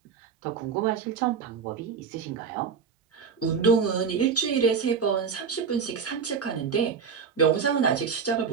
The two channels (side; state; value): left; quieter; 6.2 dB